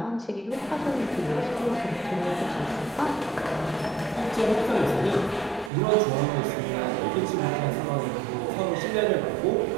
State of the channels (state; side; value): drops out; left; at 5.7 s